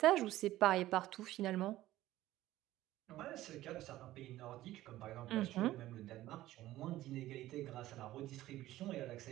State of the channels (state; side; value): quieter; left; 15.3 dB